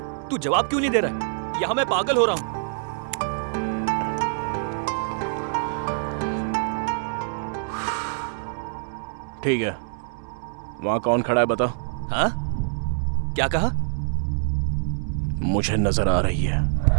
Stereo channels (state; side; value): silent; left; digital silence